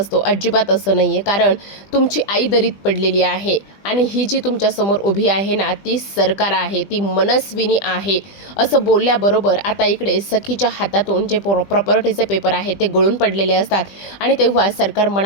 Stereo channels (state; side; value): late; right; 20 ms